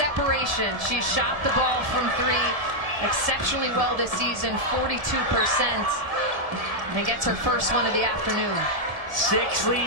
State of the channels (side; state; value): left; late; 1.8 ms